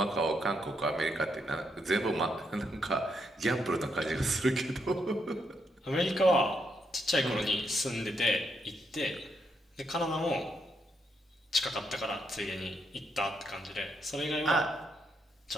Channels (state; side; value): normal; both; correlation 0.78